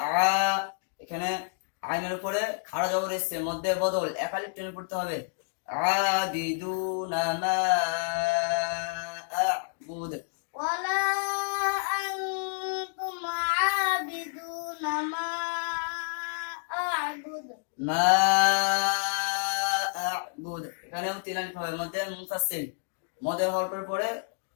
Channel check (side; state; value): right; silent; digital silence